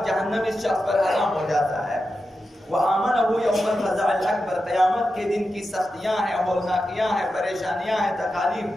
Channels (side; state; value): both; normal; correlation 0.90